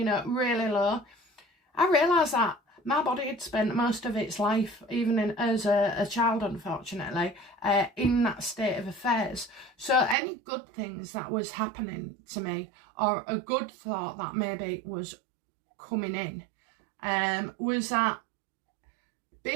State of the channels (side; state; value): left; drops out; at 10.2 s